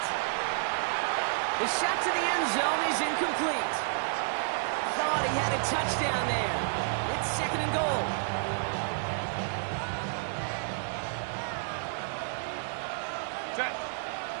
The shot to the end zone is incomplete. Thought he had a touchdown there. It's 2nd and goal. Set.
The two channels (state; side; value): silent; left; digital silence